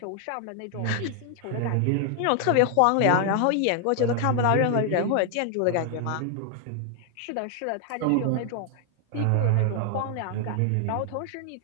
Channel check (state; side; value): different; both; correlation 0.00